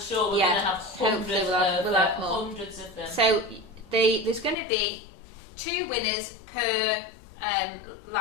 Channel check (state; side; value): drops out; right; at 4.5 s